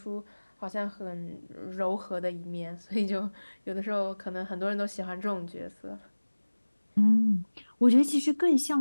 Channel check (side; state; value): both; inverted; correlation -1.00